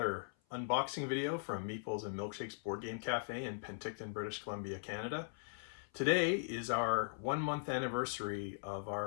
unboxing video from Meeples and Milkshakes Board Game Cafe in Penticton, British Columbia, Canada. Today is our 1 month anniversary of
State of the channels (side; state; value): right; silent; 51 dB below the other